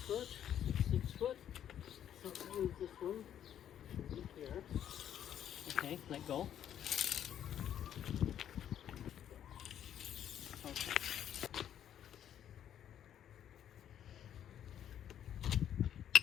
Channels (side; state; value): right; quieter; 10.1 dB